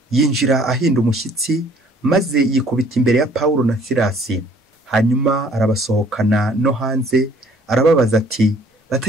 yinjira ahinda umushyitsi, maze yikubita imbere ya Paulo na Silasi. Hanyuma arabasohokana no hanze, arababaza ati,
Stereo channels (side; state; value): both; normal; correlation 0.57